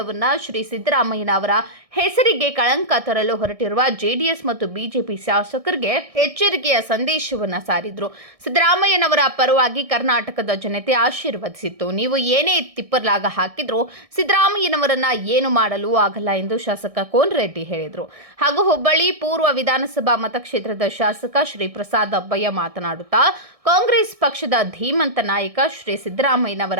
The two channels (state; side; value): late; left; 1.6 ms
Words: ಶ್ರೀ ಸಿದ್ದರಾಮಯ್ಯನವರ ಹೆಸರಿಗೆ ಕಳಂಕ ತರಲು ಹೊರಟಿರುವ ಜೆಡಿಎಸ್ ಮತ್ತು ಬಿಜೆಪಿ ಶಾಸಕರಿಗೆ ಎಚ್ಚರಿಕೆಯ ಸಂದೇಶವನ್ನು ಸಾರಿದ್ರು. ಸಿದ್ದರಾಮಯ್ಯನವರ ಪರವಾಗಿ ಕರ್ನಾಟಕದ ಜನತೆ ಆಶೀರ್ವದಿಸಿತ್ತು. ನೀವು ಏನೇ ತಿಪ್ಪರ್ಲಾಗ ಹಾಕಿದ್ರು ಸಿದ್ದರಾಮಯ್ಯನವರನ್ನ ಏನು ಮಾಡಲು ಆಗಲ್ಲ ಎಂದು ಶಾಸಕ ಕೋನರೆಡ್ಡಿ ಹೇಳಿದರು. ಹಾಗೂ ಹುಬ್ಬಳ್ಳಿ ಪೂರ್ವ ವಿಧಾನಸಭಾ ಮತಕ್ಷೇತ್ರದ ಶಾಸಕ ಶ್ರೀ ಪ್ರಸಾದ್ ಅಬ್ಬಯ್ಯ ಮಾತನಾಡುತ್ತಾ, ಕಾಂಗ್ರೆಸ್ ಪಕ್ಷದ ಧೀಮಂತ ನಾಯಕ ಶ್ರೀ